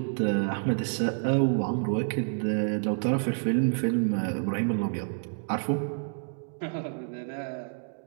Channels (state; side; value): silent; left; 59 dB below the other